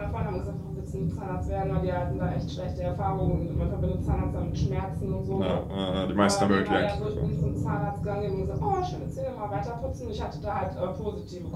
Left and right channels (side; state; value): both; identical; correlation 1.00